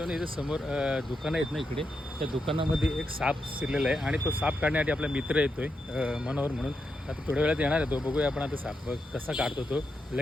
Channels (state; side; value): normal; both; correlation 0.85